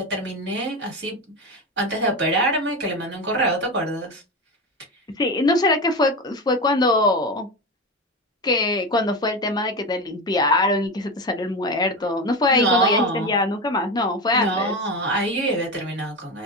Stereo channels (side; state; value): both; normal; correlation 0.21